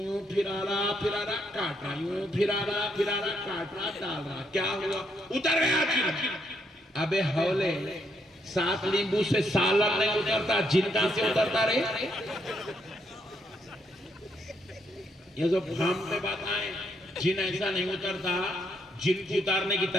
پھرا رہا کاٹ رہا، یوں پھرا رہا کاٹ رہا ڈال رہا. کیا ہوا؟ اتر گیا جن. ابے ہولے 7 لیمبو سے سالن نہیں اترتا، جن کہاں سے اترتا رہے؟ یہ جو بھام پہ بات آئے جن ایسا نہیں اترتا. جن کو اتارنے کی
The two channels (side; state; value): both; normal; correlation 0.75